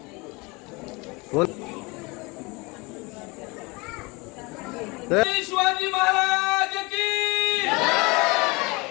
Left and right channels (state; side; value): quieter; right; 26.3 dB